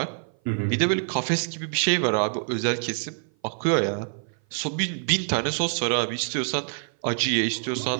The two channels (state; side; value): silent; left; 56 dB below the other